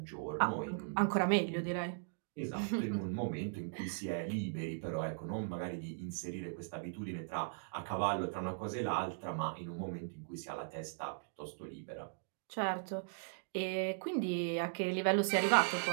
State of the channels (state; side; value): silent; left; digital silence